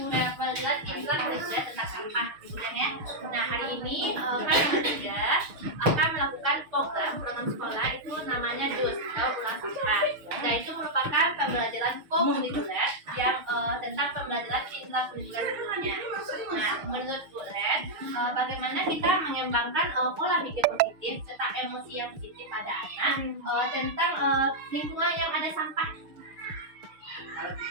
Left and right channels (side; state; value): left; late; 6.6 ms